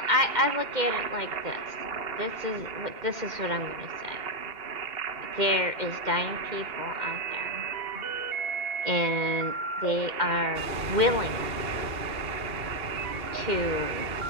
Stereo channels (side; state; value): left; late; 2.1 ms